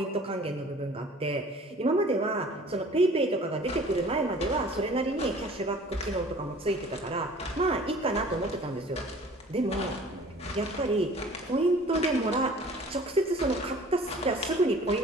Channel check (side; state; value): both; normal; correlation 0.48